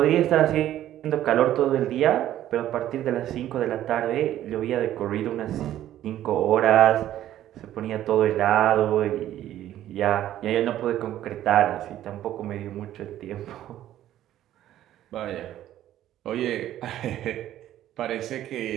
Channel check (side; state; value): left; quieter; 12.6 dB